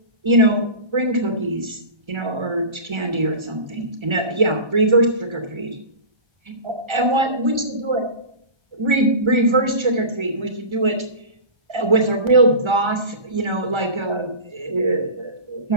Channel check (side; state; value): left; late; 1.3 ms